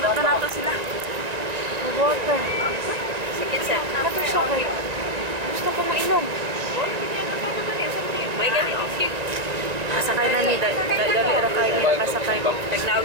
nato sila. Water. Sige sa. Nato siya kay. Gusto ko mainom. May ganito. Kasakay na ni, dali ra kayo niya kasakay ko.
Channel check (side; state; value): left; late; 1.9 ms